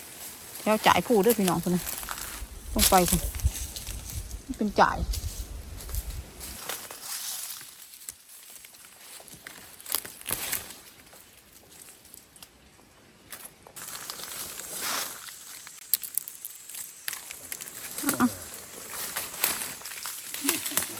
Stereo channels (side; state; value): both; identical; correlation 1.00